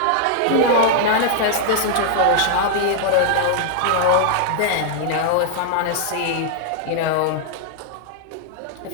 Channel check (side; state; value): both; different; correlation -0.01